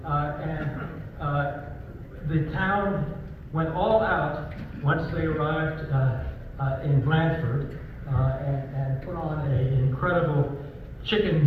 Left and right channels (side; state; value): both; identical; correlation 1.00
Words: The town went all out once they arrived in Blanford and put on an incredible